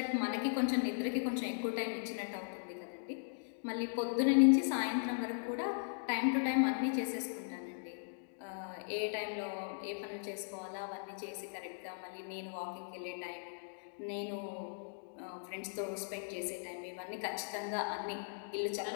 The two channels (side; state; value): right; silent; digital silence